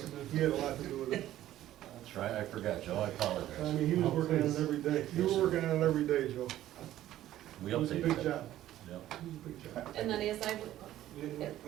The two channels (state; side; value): quieter; left; 13.4 dB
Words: he had a lot to do with it. That's right, I forgot, Joe, I I apologize. mean, he was working on it every day. You were working on it every day, Joe. We It was a updated big that. job. Yeah. It was a big job. And then as I,